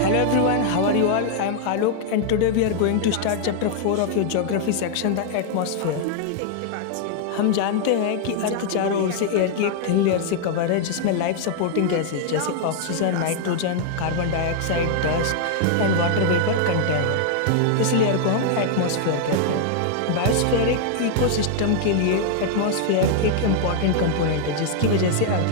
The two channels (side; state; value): both; different; correlation 0.00